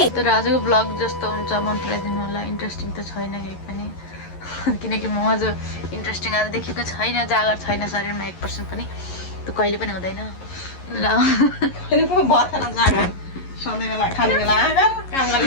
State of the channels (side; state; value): right; late; 11 ms